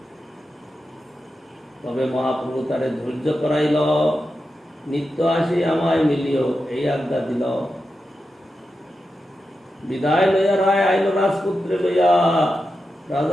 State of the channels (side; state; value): both; normal; correlation 0.90